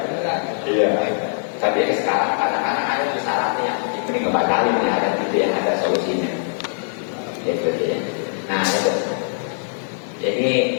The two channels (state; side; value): silent; right; digital silence